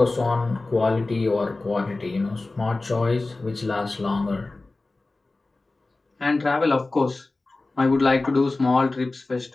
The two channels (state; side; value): quieter; right; 3.2 dB